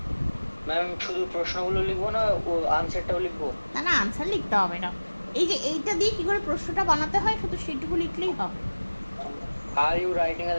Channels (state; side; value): inverted; both; correlation -1.00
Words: ম্যাম শুধু প্রশ্নগুলো লিখবো না, ও আনসারটাও লিখবো? না না, আনসার লিখতে হবে না। এই যে এইটা দিয়ে কি করে প্রশ্নটা বানাতে হয় শুধু সেটুকু লিখলেই হবে। Are you writing a